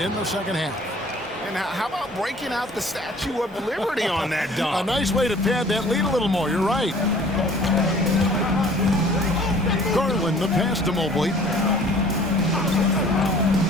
in the second half. And how about breaking out the Statue of Liberty on that dunk? A nice way to pad that lead a little more. You're right. Garland, the pass to Mobley.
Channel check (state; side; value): normal; both; correlation 0.51